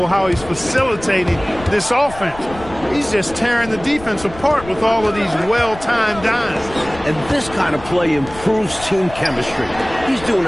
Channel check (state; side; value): noise; left; rumble, 16 dB below the sound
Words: how he's facilitating this offense. He's just tearing the defense apart with all of these well-timed dimes. And this kind of play improves team chemistry. He's doing